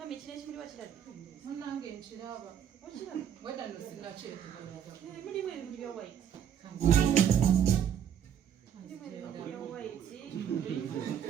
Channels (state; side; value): quieter; left; 8.9 dB